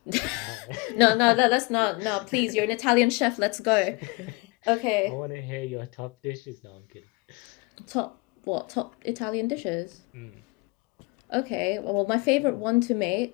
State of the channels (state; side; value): quieter; right; 25.7 dB